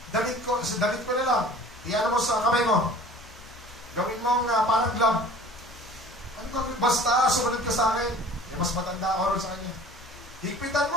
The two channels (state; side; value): normal; both; correlation 0.46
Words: Damit ko na lang. Iyan mo sa kamay mo. Gawin mong parang glove. Ano gawin? Basta sumunod ka sa akin. Mas matanda ako rin sa kanya. Higpitan